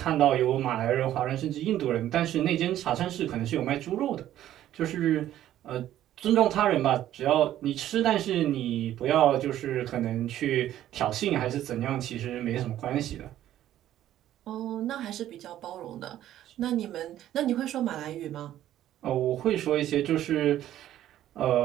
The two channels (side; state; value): left; quieter; 12.5 dB